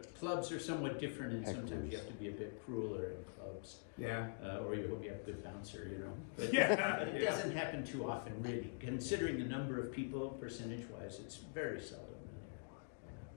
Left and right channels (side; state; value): right; silent; digital silence